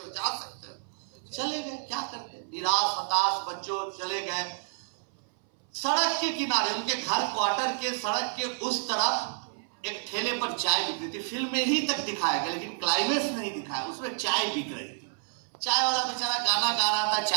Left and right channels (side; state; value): left; silent; 58 dB below the other